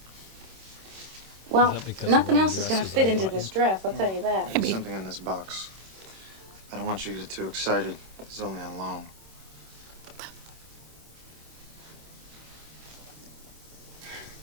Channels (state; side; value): late; left; 26 ms